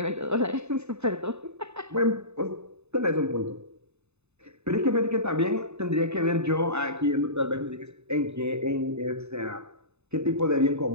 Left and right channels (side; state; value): left; late; 0.81 ms